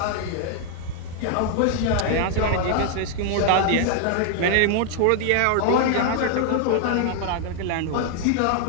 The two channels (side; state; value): both; different; correlation 0.00